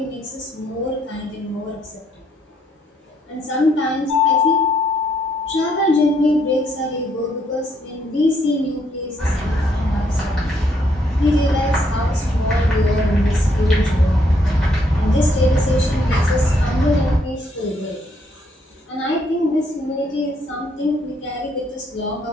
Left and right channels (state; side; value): normal; both; correlation 0.71